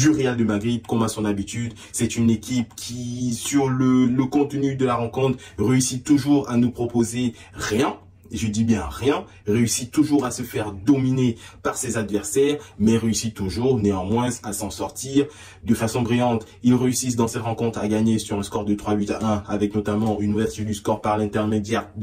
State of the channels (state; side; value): identical; both; correlation 1.00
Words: Real de Madrid comme à son habitude. C'est une équipe qui, sur le contenu de la rencontre, réussit toujours à nous proposer rien. Je dis bien rien, réussit toujours à se faire dominer par ses adversaires, mais réussit toujours néanmoins à s'en sortir de façon brillante. Ils réussissent dans cette rencontre à gagner sur un score de 3-8-1 avec notamment une ouverture du score par l'intermédiaire